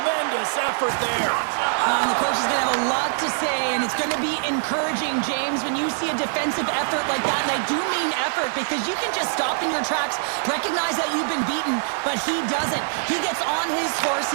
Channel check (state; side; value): silent; left; 60 dB below the other